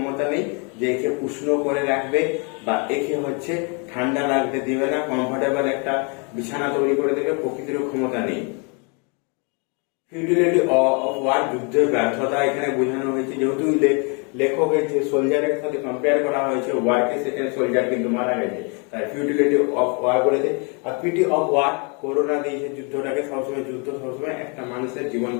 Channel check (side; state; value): right; quieter; 34.6 dB